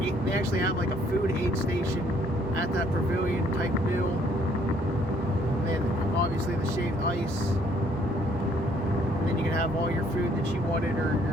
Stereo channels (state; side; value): normal; both; correlation 0.64